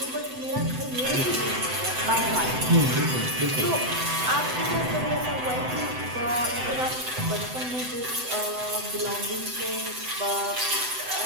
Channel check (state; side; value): late; left; 7.9 ms